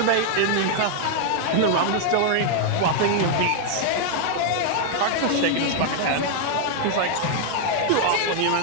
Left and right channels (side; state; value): both; different; correlation 0.00